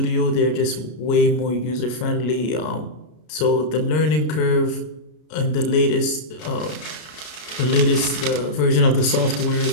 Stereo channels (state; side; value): late; right; 33 ms